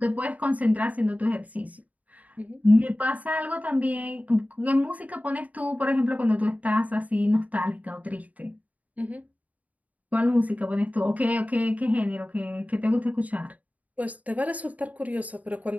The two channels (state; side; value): late; left; 0.073 ms